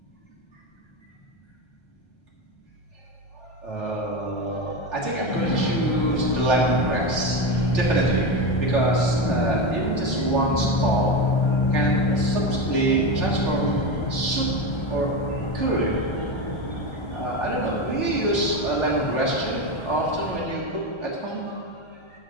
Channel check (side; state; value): right; late; 1.3 ms